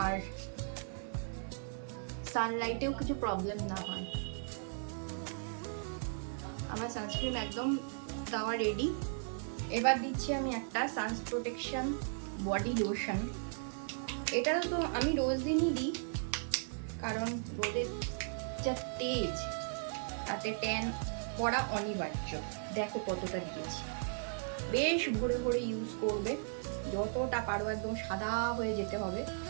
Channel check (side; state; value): left; silent; digital silence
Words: আর সানলাইটেও কিছু প্রবলেম না হয়। আমার সানস্ক্রিন একদম দেওয়া রেডি। এবার দিচ্ছি আমি একটা সানস প্রোটেকশন বডি লোশন। এটা তো আমি রোজ দিনই দিই, কারণ রোদের যা তেজ তাতে ট্যান পড়া অনিবার্য। দেখো কতটা দিয়েছি, বেশ ভোরে ভোরে ইউজ করবে, যতটা পারো একদম সাদা হয়ে যেতে হবে।